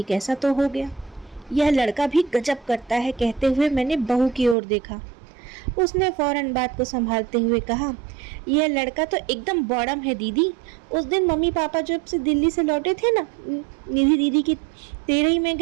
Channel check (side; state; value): left; drops out; at 4.5 s